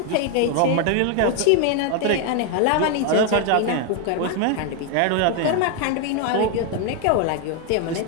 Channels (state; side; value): different; both; correlation 0.01